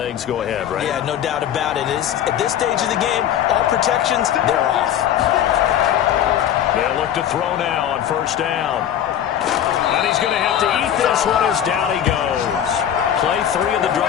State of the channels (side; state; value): right; quieter; 10.2 dB